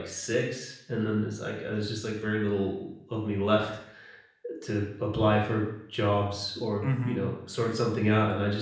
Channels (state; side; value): identical; both; correlation 1.00